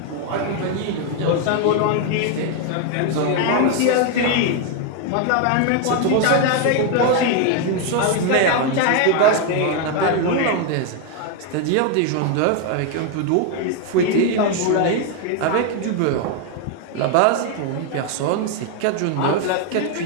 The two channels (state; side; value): different; both; correlation 0.01